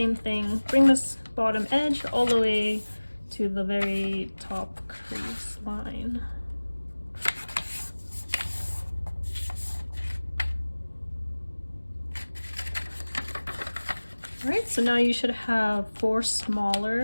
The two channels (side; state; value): both; inverted; correlation -1.00